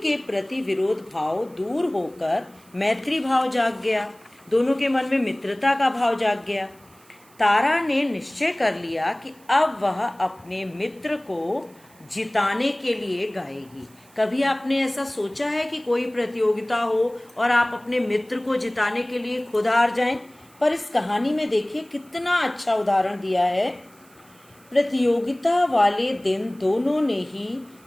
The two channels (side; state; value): right; noise; hiss, 28 dB below the sound